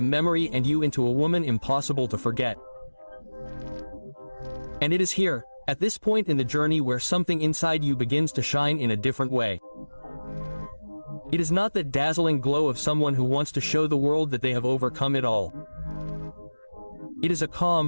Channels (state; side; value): inverted; both; correlation -1.00